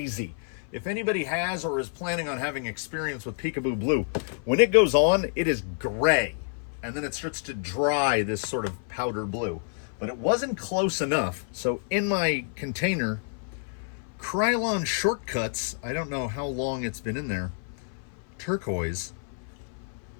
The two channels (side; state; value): right; silent; 56 dB below the other